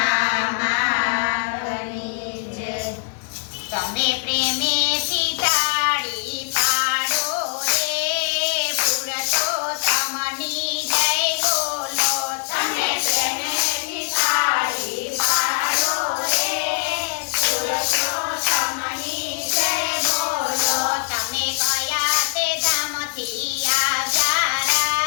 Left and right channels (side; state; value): right; silent; digital silence